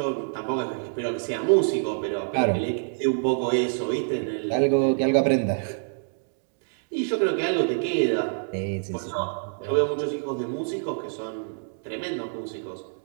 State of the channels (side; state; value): left; silent; digital silence